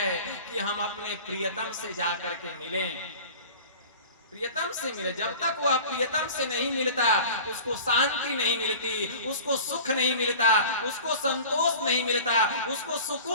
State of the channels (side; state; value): both; inverted; correlation -0.40